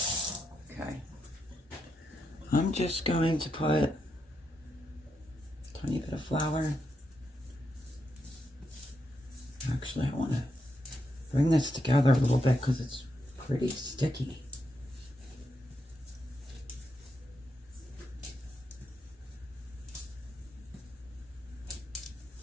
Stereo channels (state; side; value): normal; both; correlation 0.83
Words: Okay. I'm just going to put a tiny bit of flour. Actually, I want to bring this together a little bit because it's pretty sticky.